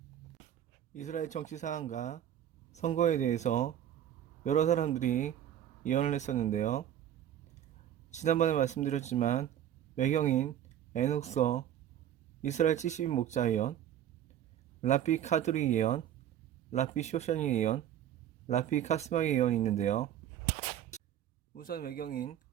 이스라엘 정치 상황과 선거에 대해서 여러 사람들이 예언을 했었는데요. 지난번에 말씀드렸지만 외경인 에녹서, 이스라엘 70인 목자 예언, 라피 카드리 예언, 라피 쇼샤니 예언, 라피 카스마이 예언이 있는데요. 우선 외경인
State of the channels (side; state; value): left; quieter; 10.7 dB